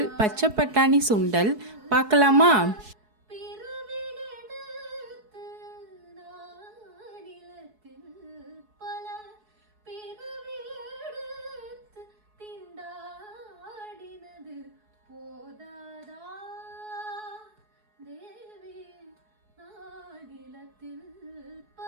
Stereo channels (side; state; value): left; late; 4.7 ms